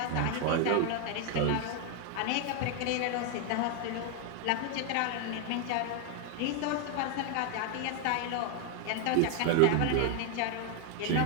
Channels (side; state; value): both; different; correlation 0.01